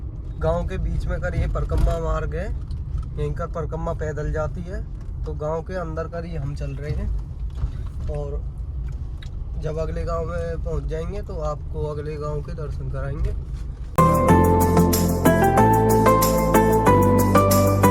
गांव के बीच में कर ये परकम्मा मार्ग है, यहीं कर परकम्मा पैदल जाती है। तो गांव के अंदर कर ये हम चल रहे हैं। और जब अगले गांव में पहुंच जाएंगे तो आपको अगले गांव के दर्शन कराएंगे।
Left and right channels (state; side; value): identical; both; correlation 1.00